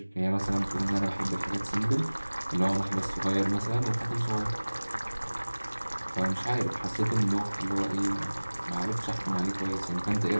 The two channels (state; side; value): inverted; both; correlation -1.00